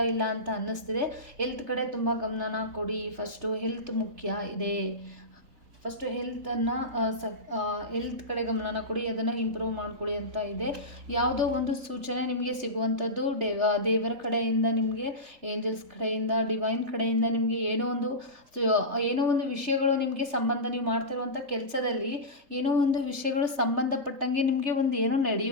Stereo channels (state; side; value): late; left; 3.3 ms